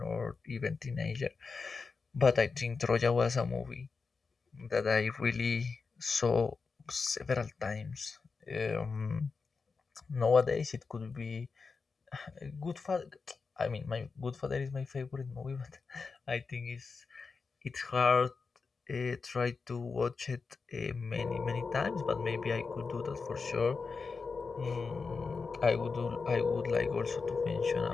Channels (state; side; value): quieter; right; 4.7 dB